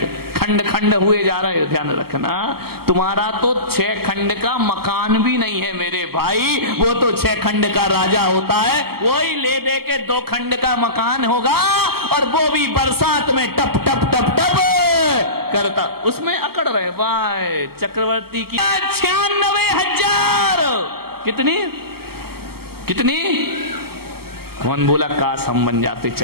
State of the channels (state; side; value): late; left; 0.95 ms